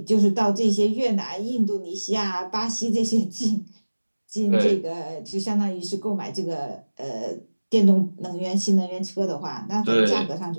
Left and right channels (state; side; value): inverted; both; correlation -1.00